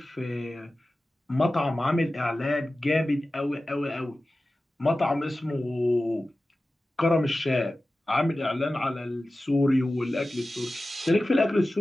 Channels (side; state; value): both; normal; correlation 0.95